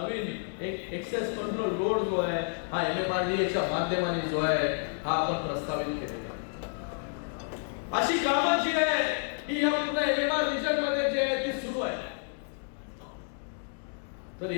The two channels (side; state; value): right; silent; digital silence